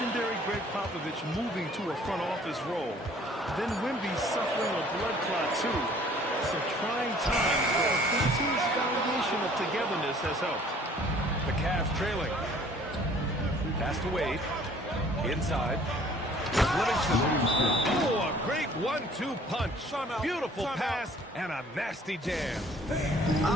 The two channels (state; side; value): normal; both; correlation 0.55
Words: Greg Popovich moving to a front office role. Then Wemby suffering a blood clot, too. Some trying times, but this team's foundation of togetherness has helped. The Cavs trailing. Pass to Wade. Inside. Livingston. Oh, a great 1-2 punch. Beautiful pass and a nasty jam.